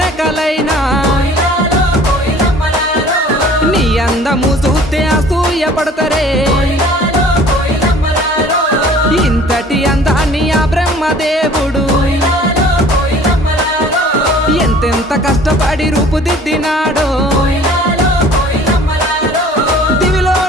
నీ అందము చూస్తే అసూయ పడతారే ఇంతటి అందాన్ని ఆ బ్రహ్మదేవుడు ఎంతెంత కష్టపడి రూపుదిద్దినాడో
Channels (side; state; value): both; normal; correlation 0.50